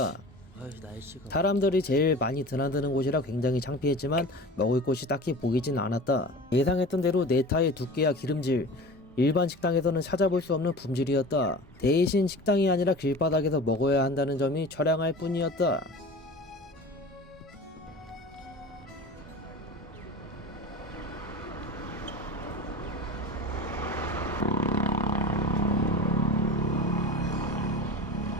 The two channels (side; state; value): both; normal; correlation 0.36